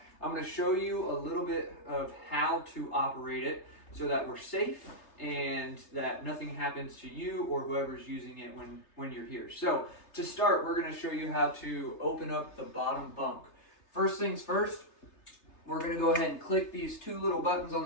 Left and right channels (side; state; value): right; late; 3.3 ms